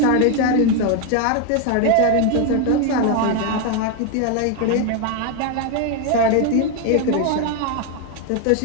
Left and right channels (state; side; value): different; both; correlation 0.01